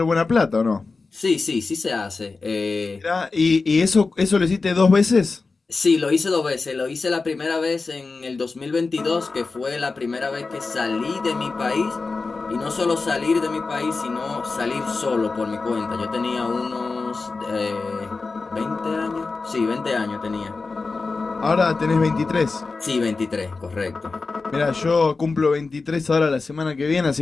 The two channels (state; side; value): quieter; right; 4.0 dB